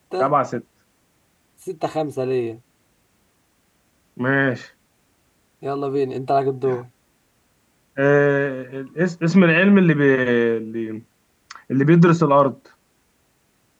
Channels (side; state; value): both; identical; correlation 1.00